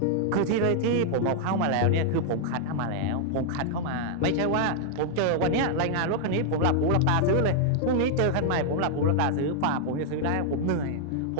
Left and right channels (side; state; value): both; different; correlation -0.01